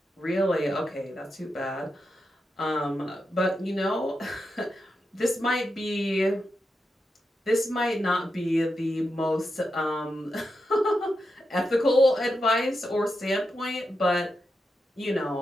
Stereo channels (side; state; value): both; normal; correlation 0.87